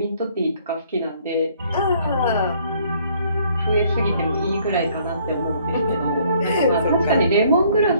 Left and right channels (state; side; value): inverted; both; correlation -0.62